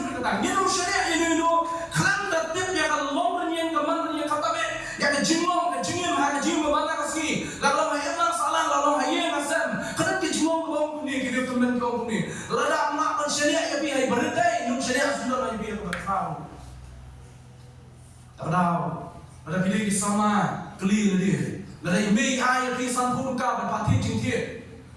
ni syariat ini kan tertib yang kalau bernyanyi keman yang kata be, yang kejinglong, kejingim, kejingim mana kasih. Lalu hayat salah, lalu hayat nasam. Kan kejinglong kau ni, kita teman kau ni. Lalu nak syariat yang biar berdaya, ni syariat sudah nak biar berkau. Ada pilih sama keli lagi. Ada email ai kisah pun kau berpati cinta.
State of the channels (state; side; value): identical; both; correlation 1.00